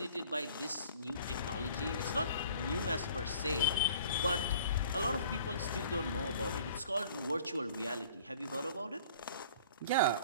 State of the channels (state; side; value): inverted; both; correlation -0.50